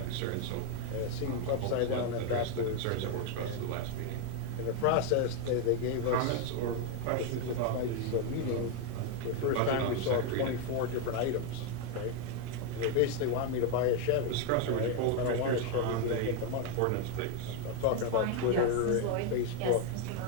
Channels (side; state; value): both; different; correlation 0.02